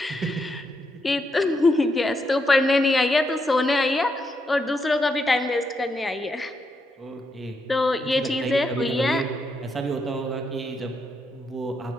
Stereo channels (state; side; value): normal; both; correlation 0.81